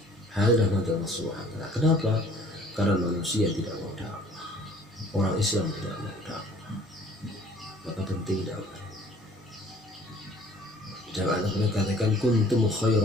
Hal Allah Subhanahu wa ta'ala. Kenapa? Karena manusia tidak mau dakwah, orang Islam tidak mau dakwah. Maka penting dakwah. Jangan Allah katakan kuntum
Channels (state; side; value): normal; both; correlation 0.54